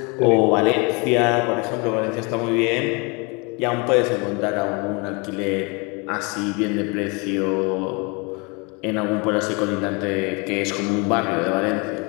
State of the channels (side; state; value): right; quieter; 29.9 dB